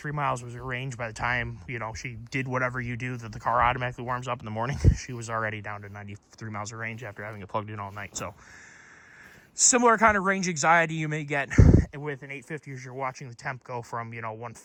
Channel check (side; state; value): both; identical; correlation 1.00